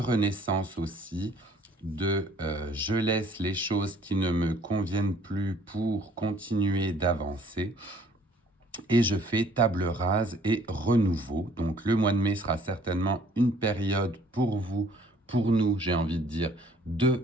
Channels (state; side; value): normal; both; correlation 0.58